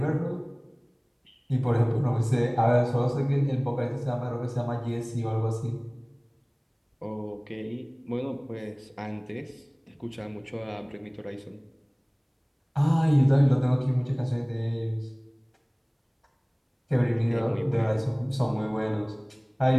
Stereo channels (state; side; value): identical; both; correlation 1.00